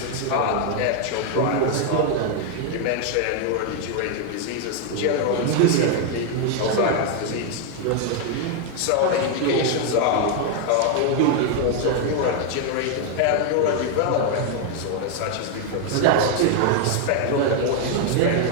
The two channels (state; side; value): different; both; correlation 0.00